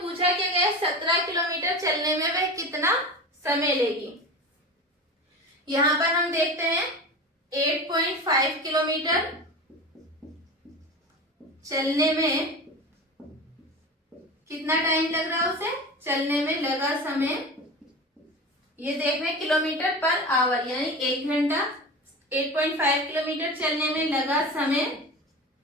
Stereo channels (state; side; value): normal; both; correlation 0.30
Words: पूछा क्या गया, 17 किलोमीटर चलने में वह कितना समय लेगी। यहां पर हम देखते हैं 8.5 किलोमीटर चलने में कितना टाइम लग रहा है, उसे चलने में लगा समय, ये देख रहे हैं किलोमीटर पर आवर, यानी 1 घंटा 8.5 किलोमीटर चलने में लगा समय,